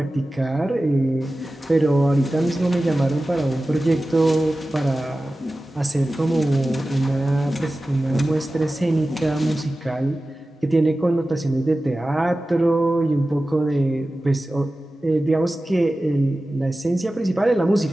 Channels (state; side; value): normal; both; correlation 0.95